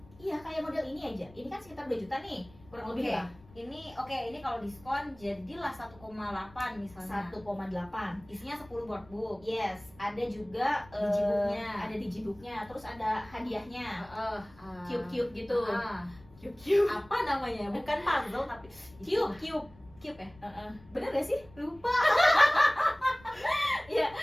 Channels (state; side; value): noise; left; rumble, 24 dB below the sound